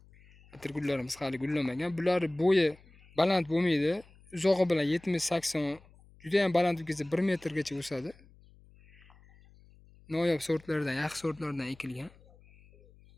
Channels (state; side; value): noise; left; hum, 26 dB below the sound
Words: atirgullarimiz hali gullamagan. Bular bo'yi baland bo'lmaydi. Uzog'i bilan 70-80, juda ham baland bo'lsa 1 metrgacha o'sadi. Noyob sortlardan, yaxshi sortlardan ekilgan.